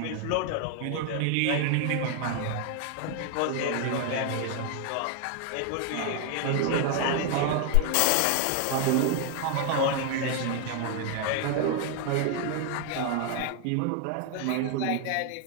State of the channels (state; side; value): different; both; correlation 0.00